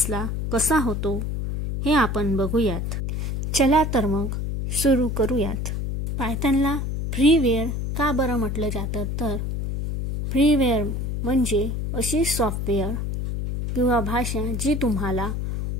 कसा होतो हे आपण बघूयात। चला तर मग सुरू करूयात। पायथनला फ्रीवेअर का बरं म्हटलं जातं? तर फ्रीवेअर म्हणजे अशी सॉफ्टवेअर किंवा भाषा जी तुम्हाला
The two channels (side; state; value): left; noise; hum, 2 dB below the sound